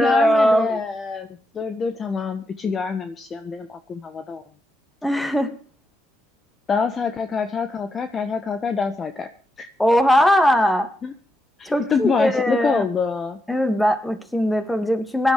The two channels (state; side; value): normal; both; correlation 0.85